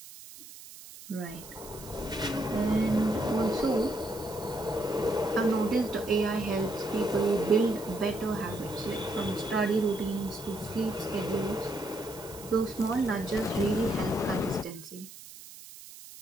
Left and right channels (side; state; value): right; noise; hiss, 16 dB below the sound